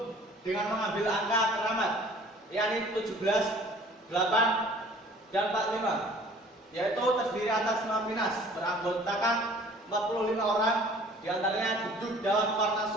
dengan mengambil angka keramat, yakni 17, 8, dan 45. Yaitu terdiri atas Mapinas beranggotakan 45 orang, diantaranya duduk dalam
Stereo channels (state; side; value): normal; both; correlation 0.51